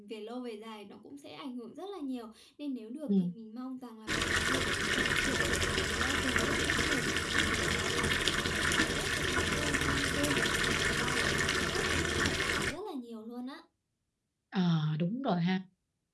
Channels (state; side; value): identical; both; correlation 1.00